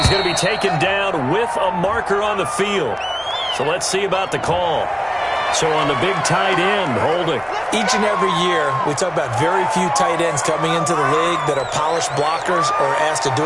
going to be taken down with a marker on the field. So let's see about the call. So on the big tight end, holding. Each and every year, we talk about very few tight ends coming into the league that are polished blockers or asked to do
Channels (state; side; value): identical; both; correlation 1.00